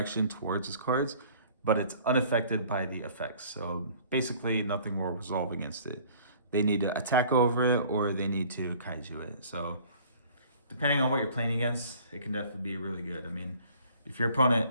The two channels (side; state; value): both; inverted; correlation -0.52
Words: towards his cards, but it's unaffected by the effects. So basically nothing will resolve against it. They need to attack over it or they need to kaiju it. So depending on what you're playing against, it can definitely be really good. I mean, if your